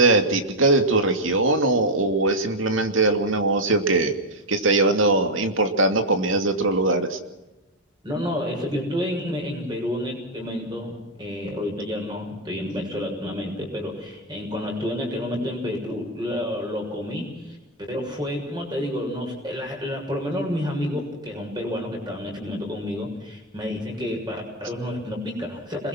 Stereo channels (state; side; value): normal; both; correlation 0.03